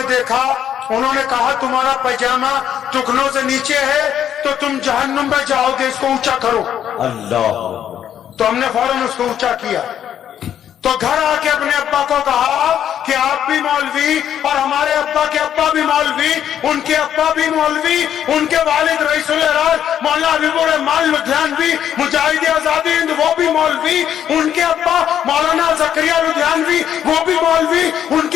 دیکھا، انہوں نے کہا تمہارا پائجامہ ٹکنوں سے نیچے ہے تو تم جہنم میں جاؤ گے، اس کو اونچا کرو۔ اللہ اکبر تو ہم نے فوراً اس کو اونچا کیا، تو گھر آ کے اپنے ابا کو کہا کہ آپ بھی مولوی اور ہمارے ابا کے ابا بھی مولوی، ان کے ابا بھی مولوی، ان کے والد رئیس الہراس مولانا حبیب الرحمان لدھیانوی مجاہد آزادی ہند وہ بھی مولوی، ان کے ابا مولانا زکریا لدھیانوی وہ بھی مولوی، ان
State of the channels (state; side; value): quieter; right; 9.8 dB